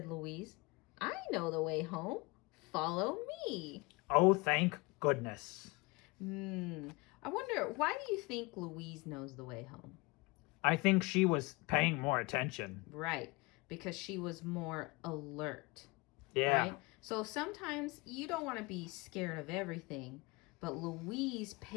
Louise. I know the way home. Follow me. Oh, thank goodness. I wonder, why do you think Louise knows the way home? I think she was paying more attention. Right, because she was more alert. Yeah. Right? So sometimes you don't want to be scared of everything, but Louise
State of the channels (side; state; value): right; quieter; 25.7 dB